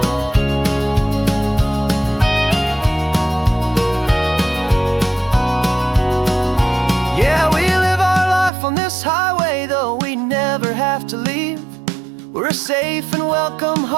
Yeah, we live our life on this highway, though we never have to leave. We're a safe and welcome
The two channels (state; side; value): drops out; left; at 8.5 s